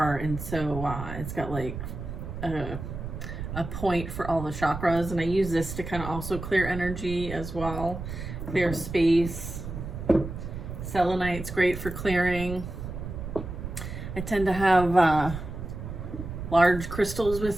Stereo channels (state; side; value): noise; right; rumble, 8 dB below the sound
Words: and so it's got like a point for all the chakras, and I use this to kind of also clear energy as well, clear space. Selenite's great for clearing. I tend to have large crystals